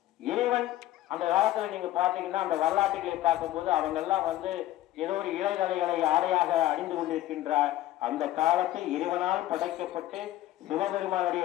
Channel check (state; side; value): quieter; right; 14.6 dB